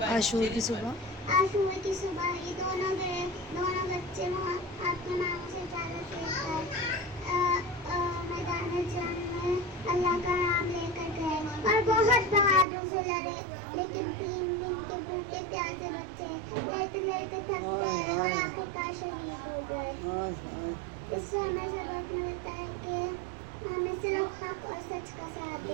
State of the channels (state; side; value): drops out; left; at 12.7 s